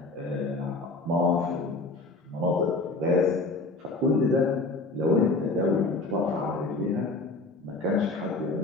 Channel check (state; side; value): quieter; right; 3.3 dB